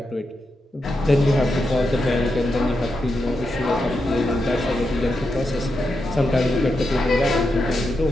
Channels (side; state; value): both; normal; correlation 0.86